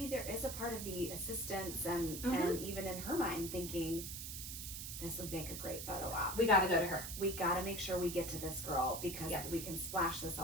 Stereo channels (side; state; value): right; noise; hiss, 6 dB below the sound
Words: there is a part of the assistants and even in her mind thinking, this would make a great photo op. We got to go to her. We got to make sure we get to this girl because we can splash this